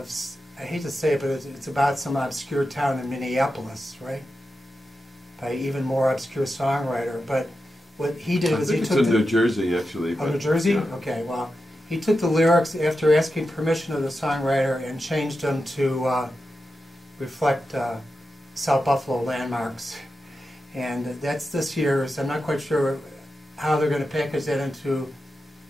I hate to say it, but it's about some obscure town in Minneapolis, right? By an even more obscure songwriter. But what he did was he took it's in New Jersey, actually. Oh, New Jersey? Yeah. Okay, well, he took the lyrics after asking permission of the songwriter and changed them to reflect South Buffalo landmarks. And that's this year's. I'm not quite sure how they're going to package that into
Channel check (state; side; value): normal; both; correlation 0.90